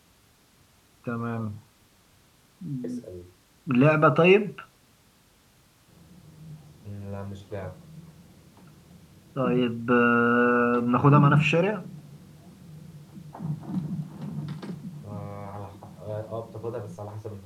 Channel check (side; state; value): both; identical; correlation 1.00